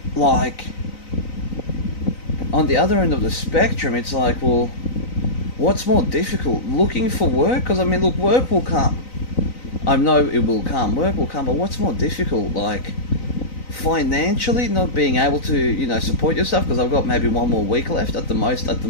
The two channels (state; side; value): late; right; 3.9 ms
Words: like, on the other end of the spectrum, it's like, well, what's more difficult? Looking for work? Because, look, work will come. I know it will come. Work will come, but what's more difficult? Like, financially not being able to, support yourself, because I've got maybe one more week left at the most at the